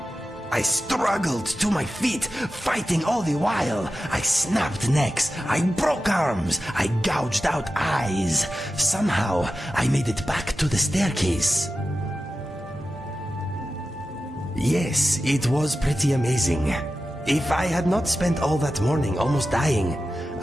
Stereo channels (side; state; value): both; normal; correlation 0.92